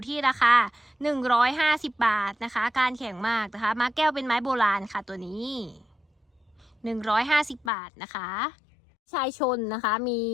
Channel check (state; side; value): drops out; right; at 7.7 s